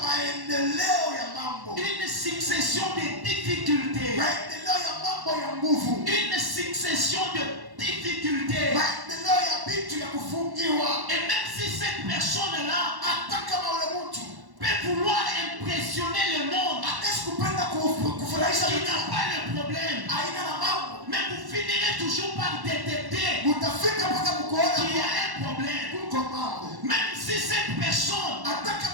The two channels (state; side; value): late; left; 1.1 ms